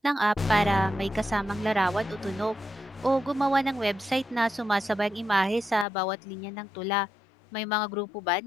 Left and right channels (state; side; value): drops out; right; at 5.9 s